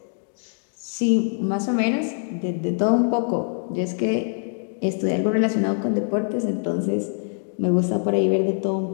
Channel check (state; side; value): silent; right; digital silence